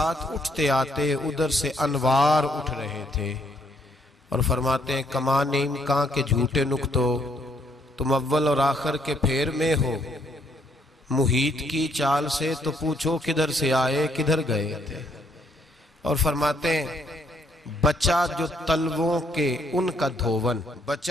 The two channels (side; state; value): both; normal; correlation 0.70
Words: اٹھتے آتے ادھر سے انوار اٹھ رہے تھے۔ اور فرماتے ہیں کمان امکان کے جھوٹے نکتو، تم اول اور آخر کے پھیر میں ہو، محیط کی چال سے تو پوچھو کدھر سے آئے کدھر گئے تھے۔ اور فرماتے ہیں بچہ جو تلووں کے ان کا دھوون،